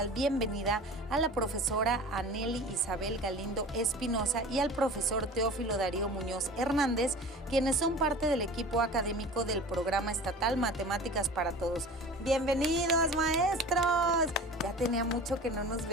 bienvenida a la profesora Anely Isabel Galindo Espinosa y al profesor Teófilo Darío Muñoz Hernández, quienes son parte del equipo académico del Programa Estatal Matemáticas para Todos. ¡Bienvenidos, maestros! Ya tenía mucho que no nos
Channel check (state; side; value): normal; both; correlation 0.38